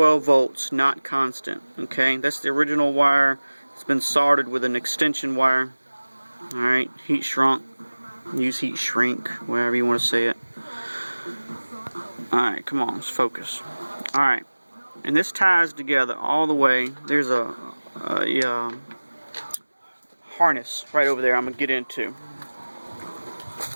volts, not constant. Okay, that's the original wire. It's been soldered with an extension wire. Alright, heat shrunk. Use heat shrink, whatever you want to say it. Alright, come on, let's focus. Alright, and this ties together all the way. There's a harness right over there I'm going to get into.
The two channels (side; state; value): both; inverted; correlation -1.00